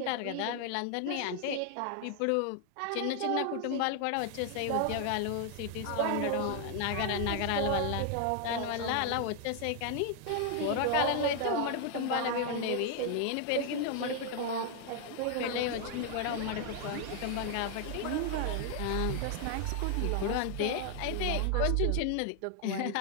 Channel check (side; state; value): both; different; correlation 0.00